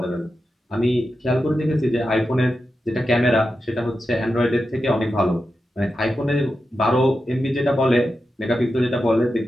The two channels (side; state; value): both; normal; correlation 0.90